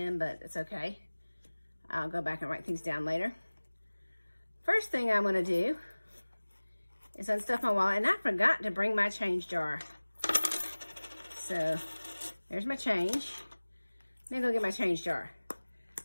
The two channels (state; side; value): inverted; both; correlation -1.00